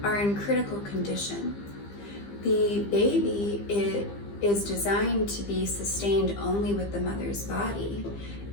are in critical condition. The baby is designed to be sustained only with the mother's body.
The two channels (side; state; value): right; late; 15 ms